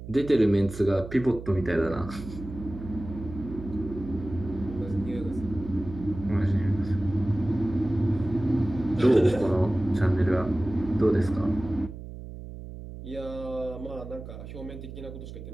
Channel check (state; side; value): noise; right; hum, 12 dB below the sound